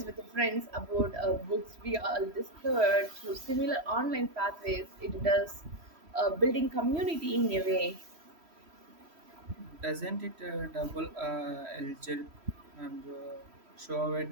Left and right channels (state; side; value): late; left; 3.1 ms